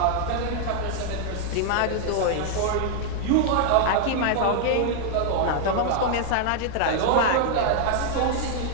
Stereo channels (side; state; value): both; different; correlation 0.00